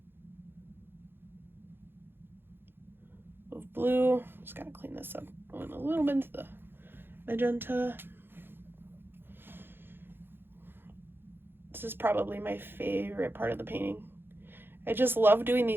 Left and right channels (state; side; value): late; left; 0.10 ms